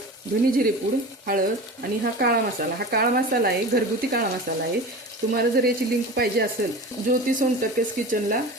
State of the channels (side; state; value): both; normal; correlation 0.33